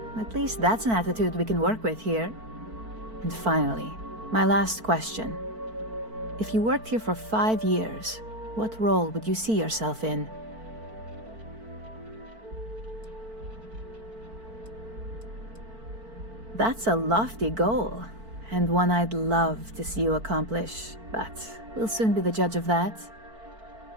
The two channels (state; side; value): late; left; 4.5 ms